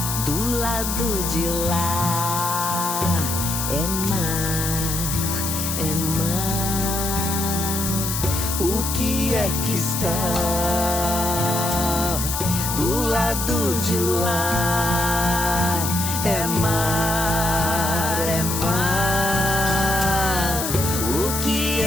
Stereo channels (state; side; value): noise; left; hiss, 3 dB below the sound